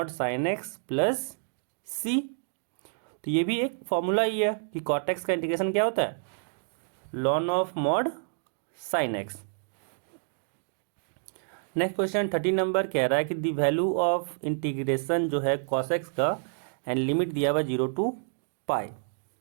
sin x plus c। तो ये भी एक फॉर्मूला ही है कि cot x का इंटीग्रेशन क्या होता है ln of mod sin x। Next question 13 number कह रहा है कि दी वैल्यू ऑफ इंटीग्रेशन जो है cos x का एंड लिमिट दिया हुआ 0 to पाई।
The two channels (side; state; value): left; silent; digital silence